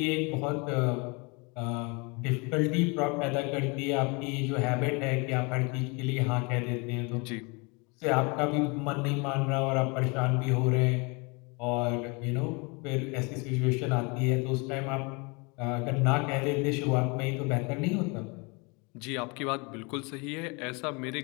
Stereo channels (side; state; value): right; quieter; 30.1 dB